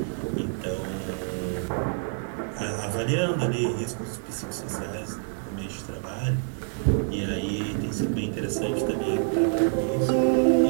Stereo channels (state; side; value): silent; left; 59 dB below the other